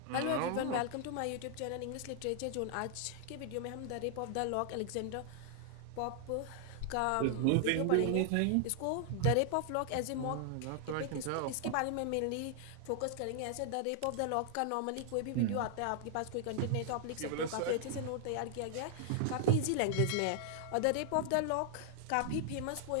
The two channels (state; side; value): different; both; correlation 0.00